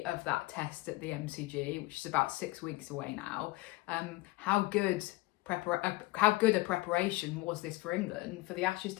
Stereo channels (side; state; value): right; quieter; 20.7 dB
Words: of that test at the MCG, which is about 6 weeks away now, how good a preparation was this for England for the Ashes